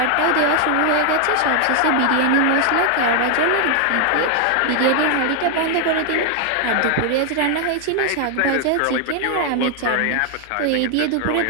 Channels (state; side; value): different; both; correlation 0.00